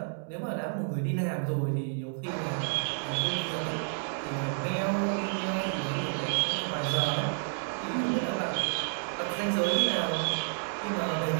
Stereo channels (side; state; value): left; silent; digital silence